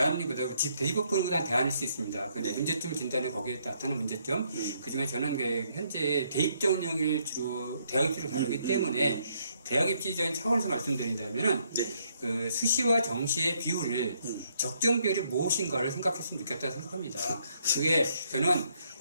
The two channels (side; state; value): both; inverted; correlation -0.71